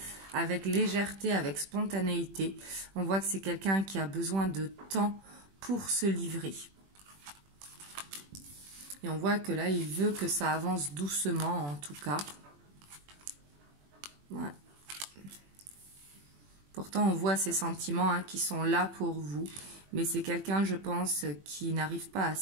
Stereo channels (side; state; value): left; late; 21 ms